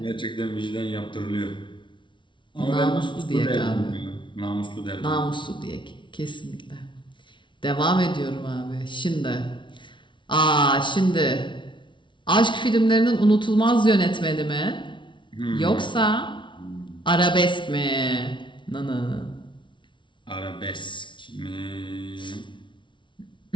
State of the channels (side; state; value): right; late; 0.24 ms